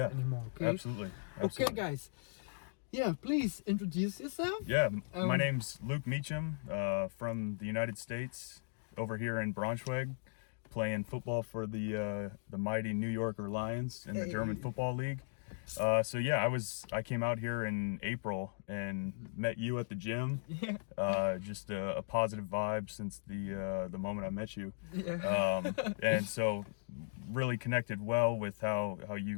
Okay. Absolutely. Okay, guys. Yeah, please introduce yourself. Yeah, my name's Luc Meacham from the United States, over here in Braunschweig, playing football for the mighty New Yorker Lions in the German Football League. So yeah, I came out here in April and met you at the gym. Yeah. Just a positive vibe since the moment I met you. Yeah. And so really connected well with how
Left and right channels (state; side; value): silent; right; digital silence